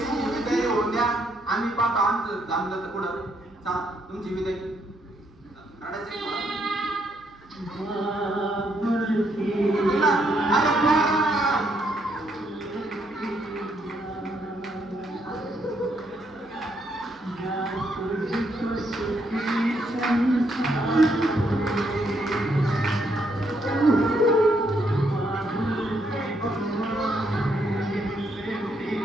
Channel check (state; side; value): noise; right; hum, 29 dB below the sound